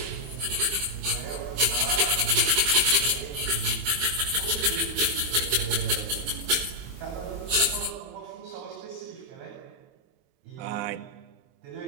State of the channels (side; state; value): left; late; 23 ms